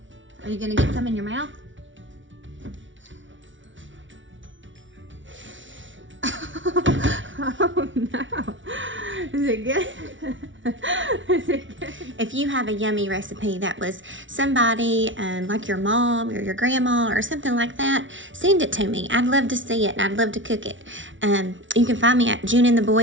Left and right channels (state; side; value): late; left; 0.56 ms